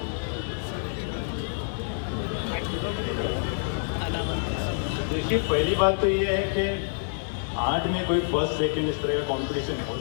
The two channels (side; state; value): right; silent; digital silence